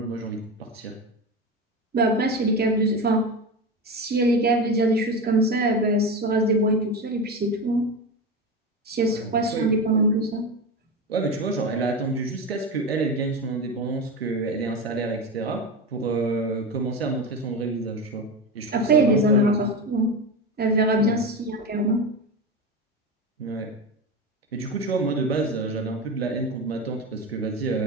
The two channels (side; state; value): both; normal; correlation 0.21